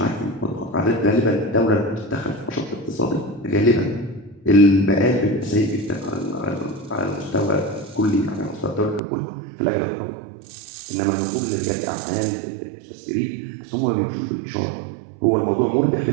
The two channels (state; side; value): drops out; left; at 9.0 s